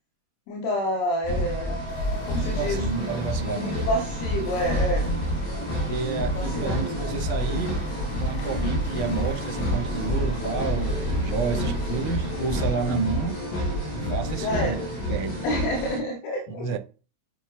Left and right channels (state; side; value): late; right; 25 ms